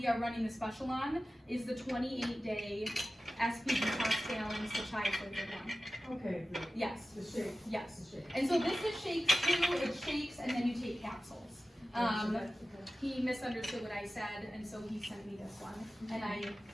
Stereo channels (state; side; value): normal; both; correlation 0.95